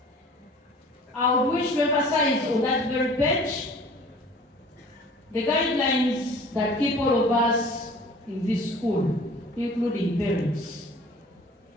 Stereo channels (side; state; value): both; normal; correlation 0.47